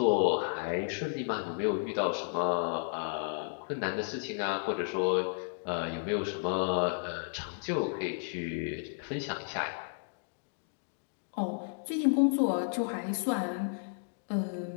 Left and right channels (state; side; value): silent; right; digital silence